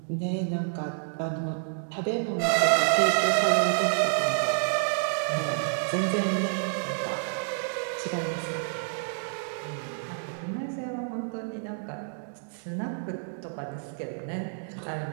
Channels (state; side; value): silent; left; digital silence